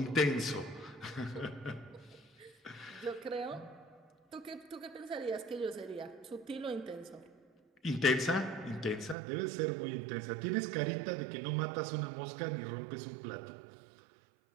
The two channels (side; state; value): left; drops out; at 9.2 s